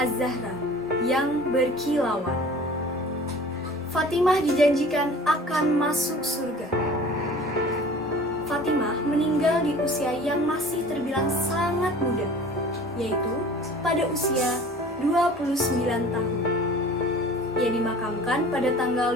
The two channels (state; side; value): normal; both; correlation 0.44